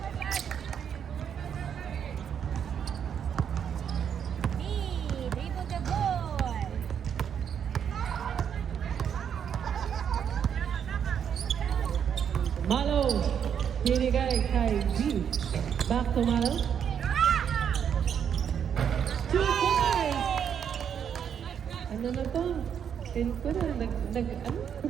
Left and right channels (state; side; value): quieter; left; 8.2 dB